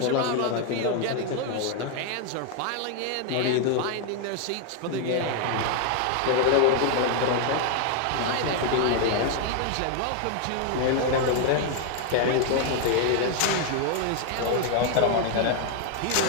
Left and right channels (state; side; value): different; both; correlation 0.00